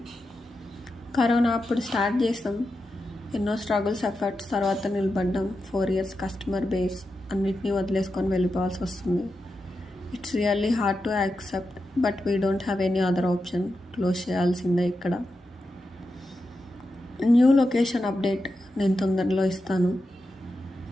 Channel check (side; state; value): both; normal; correlation 0.89